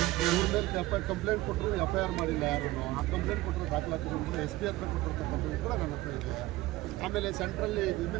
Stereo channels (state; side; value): quieter; left; 18.1 dB